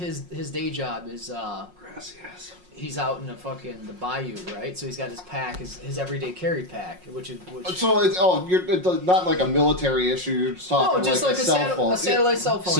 day job is Gracias. he's out in the bayou, right? So he's got his pack, his everyday carry pack, which. So it's not like a military issue. You're just talking No, just like like a cell phone. a satellite cell phone.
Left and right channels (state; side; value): late; left; 5.5 ms